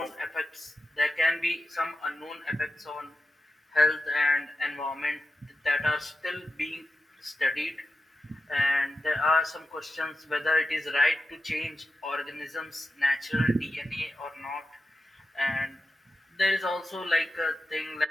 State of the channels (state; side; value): normal; both; correlation 0.91